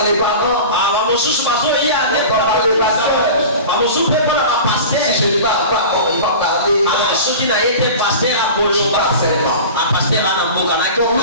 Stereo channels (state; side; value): inverted; both; correlation -0.35